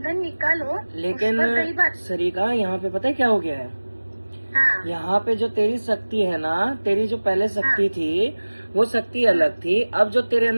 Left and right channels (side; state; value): both; inverted; correlation -1.00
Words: निकालो। लेकिन सरिका यहाँ पे पता है क्या हो गया है, हाँ। यहाँ पे जो तेरी शक्ति है ना, तेरी जो पहले शक्ति थी वो शक्ति अलग थी, अब जो तेरे